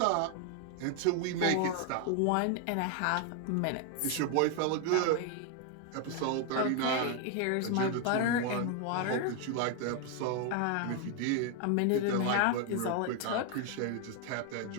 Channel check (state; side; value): different; both; correlation 0.01